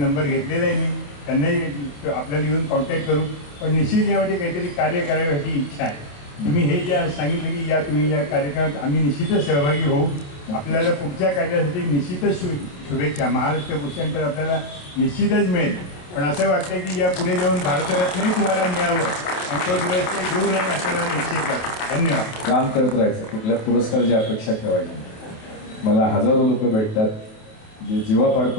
घेतलेला आहे. मी त्यांनाही आपल्याला येऊन कॉन्टॅक्ट करू. पण निश्चित यामध्ये काहीतरी कार्य करायची इच्छा आहे. तुम्ही हे जे सांगितलं की तुम्ही या कार्यक्रमात आम्ही निश्चितच सहभागी होऊ. आपल्याला पुढच्या कार्यासाठी निश्चितच शुभेच्छा. महाराष्ट्र भूषण तर आपल्याला निश्चितच मिळेल. पण असं वाटतं की या पुढे जाऊन भारतरत्नही तुम्हाला मिळावं आणि तो दिवस ते दूर नाही असं मला निश्चित वाटतं. धन्यवाद. काम करत राहायचं, कुठल्या पुरस्काराची अपेक्षा ठेवायची नाही. मला हजारो लोक भेटतात जे जीवापाड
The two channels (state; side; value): late; right; 28 ms